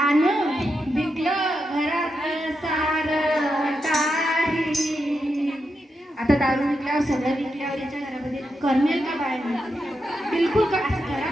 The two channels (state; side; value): normal; both; correlation 0.85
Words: विकलं घरातलं सारं काही. आता दारू विकल्यावर सगळं विकल्यावर याच्या घरामध्ये करमेल का बाहेर? बिलकुल का. असं